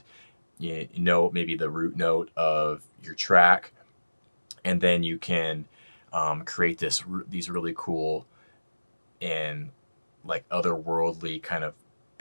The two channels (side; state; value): both; inverted; correlation -1.00